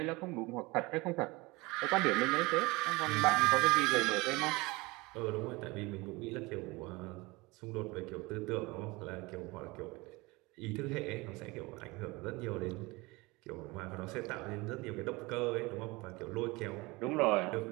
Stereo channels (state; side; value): quieter; left; 23.5 dB